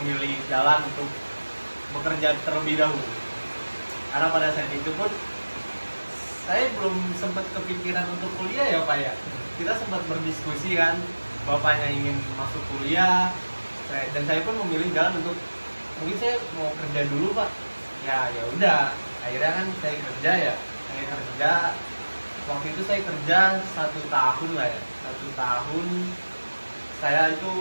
jalan untuk bekerja terlebih dahulu. Karena pada saat itu pun saya belum sempat kepikiran untuk kuliah ya Pak ya. Kita sempat berdiskusi kan, bapaknya ingin masuk kuliah, dan saya pun memilih jalan untuk mungkin saya mau kerja dulu Pak. Ya udah, akhirnya kan saya kerja ya. Saya kerja waktu itu saya kerja 1 tahun lah ya. 1 tahun saya itu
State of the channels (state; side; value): inverted; both; correlation -1.00